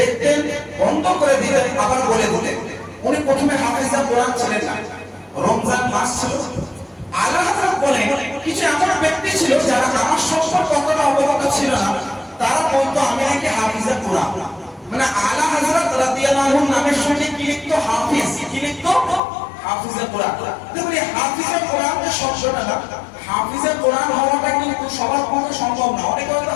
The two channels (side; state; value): right; drops out; at 19.2 s